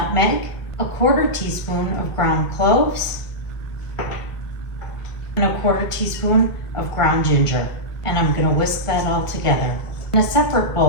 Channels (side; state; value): right; late; 1.7 ms